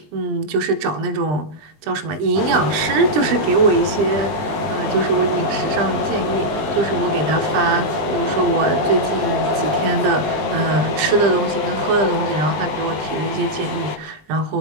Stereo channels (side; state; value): left; late; 20 ms